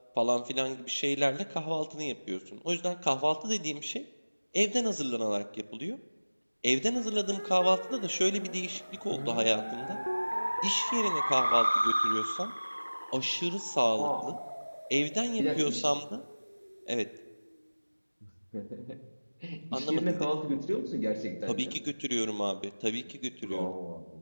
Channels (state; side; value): inverted; both; correlation -1.00